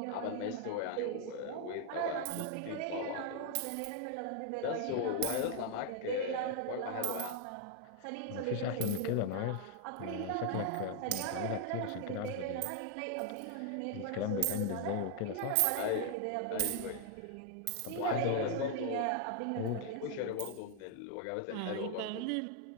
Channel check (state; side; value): different; both; correlation 0.00